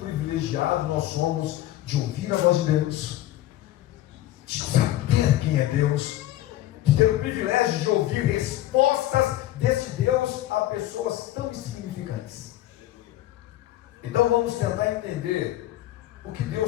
nós somos de ouvir a voz de Deus, de saber quem é Deus, de ter o privilégio de ouvir respostas desse Deus a pessoas tão insignificantes. Então vamos tentar entender o que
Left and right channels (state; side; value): quieter; right; 14.5 dB